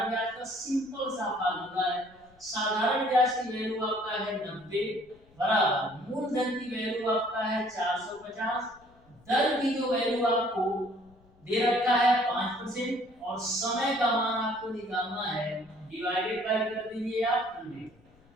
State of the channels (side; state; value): left; noise; rumble, 29 dB below the sound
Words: ब्याज का सिंपल सा फार्मूला है। साधारण ब्याज की वैल्यू आपका है 90 बराबर मूलधन की वैल्यू आपका है 450, दर की जो वैल्यू आपको दे रखा है 5% और समय का मान आपको निकालना है, डिवाइडेड बाय कर दीजिए आप 100।